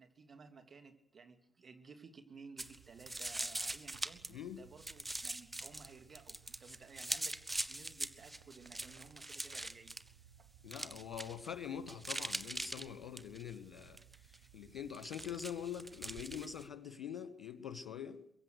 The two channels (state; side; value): normal; both; correlation 0.76